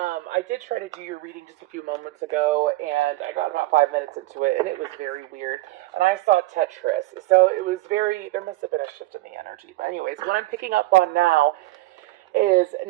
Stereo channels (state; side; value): quieter; left; 19.0 dB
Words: did try to do your reading just a few moments ago, and I got about 5 minutes into it, and it was very weird. And I saw Tetris, so it was very. There must have been a shift in the energy. But anyways, what I'm picking up on now is